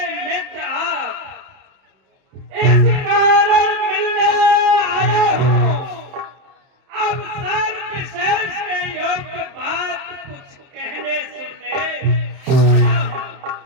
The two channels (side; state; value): left; late; 31 ms